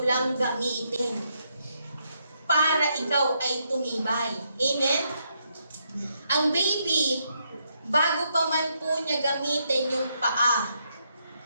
lang gamitin para ikaw ay tumibay. Amen? Ang baby, bago pa man po niya gamitin yung paa,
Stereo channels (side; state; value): both; inverted; correlation -0.78